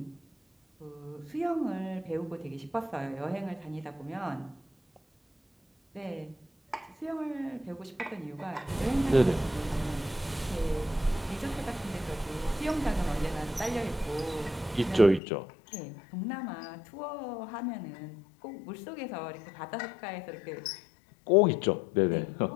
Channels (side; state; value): right; drops out; at 15.2 s